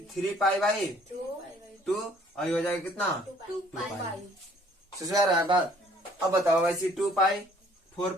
पाई बाई 2 और ये हो जाएगा कितना 2 पाई। पाई। समझ आ रहा है बात? अब बताओ वैसे 2 पाई 4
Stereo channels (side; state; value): both; normal; correlation 0.58